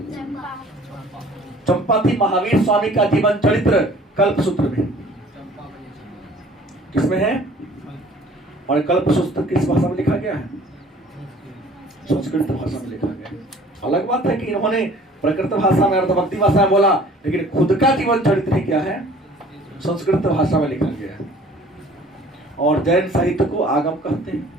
चंपा थी। महावीर स्वामी का जीवन चरित्र कल्पसूत्र में, किसमें है, और कल्पसूत्र किस भाषा में लिखा गया है, संस्कृत भाषा में लिखा गया। अलग बात है कि इन्होंने प्रकृत भाषा में, अर्थभक्ति भाषा में बोला, लेकिन खुद का जीवन चरित्र क्या है, संस्कृत भाषा में लिखा गया है। और जैन साहित्य को आगम कहते हैं।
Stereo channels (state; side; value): normal; both; correlation 0.51